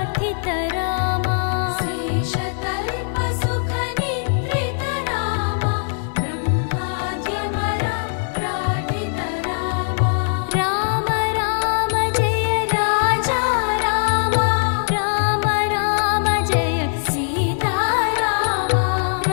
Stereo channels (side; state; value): right; silent; digital silence